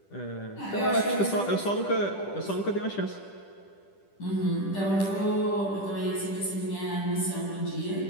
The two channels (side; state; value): right; late; 10 ms